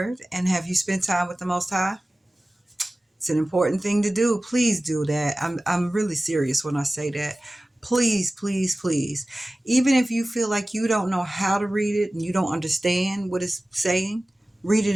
and have you spent time with the Most High? It's an important thing to do. Please do that. I'm really serious when I say that. Please, please, please. Even if you feel like you don't know how to read it and you don't understand what it's saying, read it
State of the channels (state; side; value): normal; both; correlation 0.97